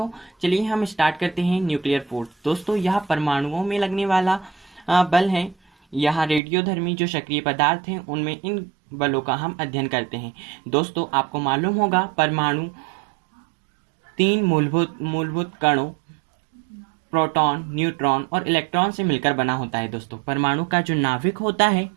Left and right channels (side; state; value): left; drops out; at 6.4 s